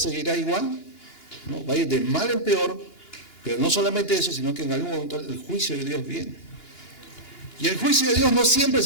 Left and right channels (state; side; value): late; right; 2.9 ms